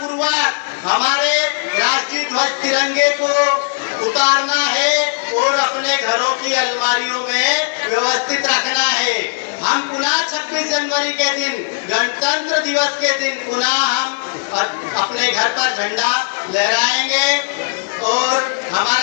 हमारे राष्ट्रीय ध्वज तिरंगे को उतारना है और अपने घरों की अलमारियों में व्यवस्थित रखना है। हम पुनः 26 जनवरी के दिन, गणतंत्र दिवस के दिन पुनः हम अपने घर पर झंडा लहराएंगे और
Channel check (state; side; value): silent; right; digital silence